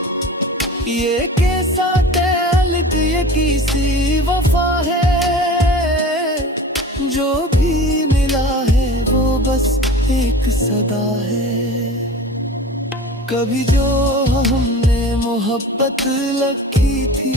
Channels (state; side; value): normal; both; correlation 0.37